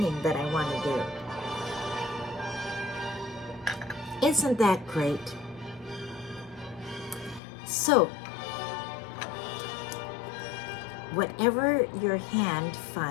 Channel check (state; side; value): drops out; right; at 7.4 s